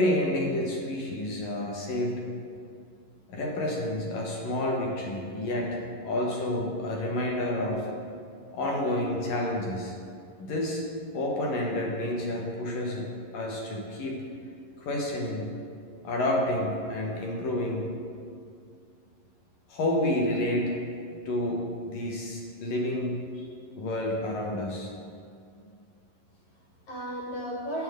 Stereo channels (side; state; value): right; late; 11 ms